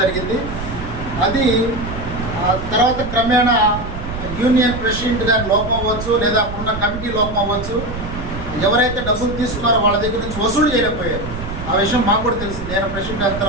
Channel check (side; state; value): right; noise; rumble, 9 dB below the sound